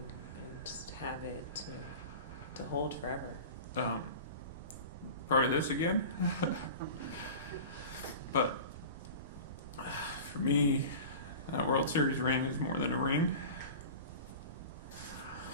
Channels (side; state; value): both; inverted; correlation -0.35